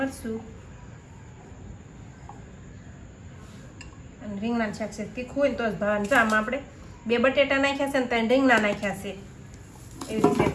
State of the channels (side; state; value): both; identical; correlation 1.00